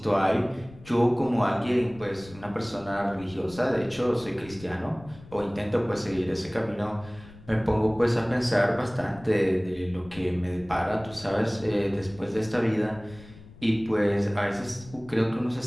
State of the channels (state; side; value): noise; left; rumble, 20 dB below the sound